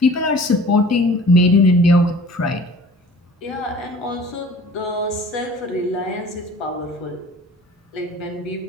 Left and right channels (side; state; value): both; normal; correlation 0.46